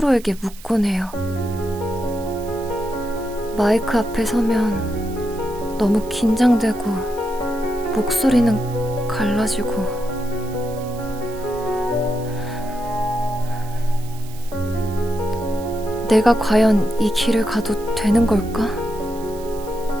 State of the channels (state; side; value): noise; right; hiss, 20 dB below the sound